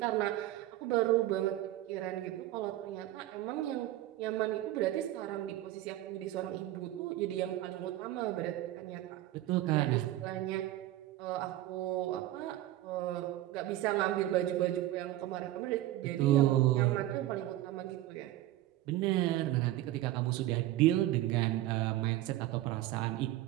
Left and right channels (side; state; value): left; quieter; 14.9 dB